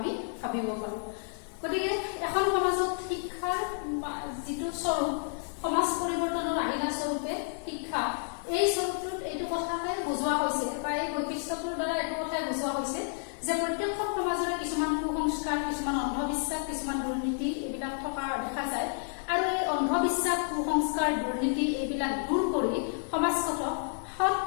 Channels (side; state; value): right; silent; 58 dB below the other